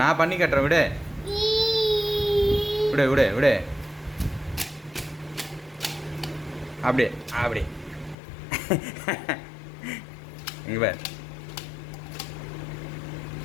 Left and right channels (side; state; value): right; drops out; at 8.2 s